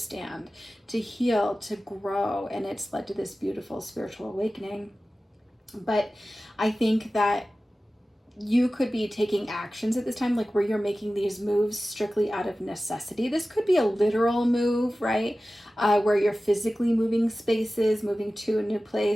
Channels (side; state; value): both; normal; correlation 0.96